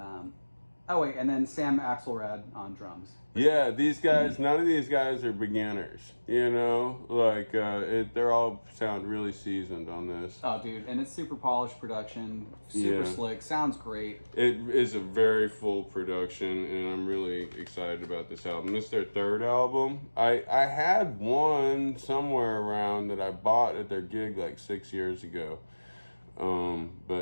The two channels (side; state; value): both; inverted; correlation -1.00